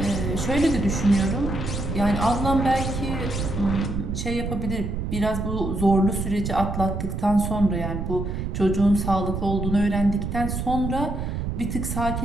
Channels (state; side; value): noise; right; rumble, 3 dB below the sound